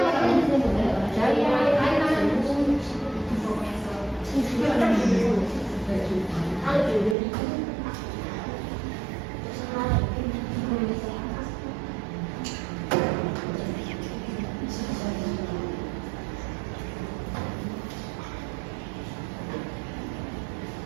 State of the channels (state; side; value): drops out; left; at 7.2 s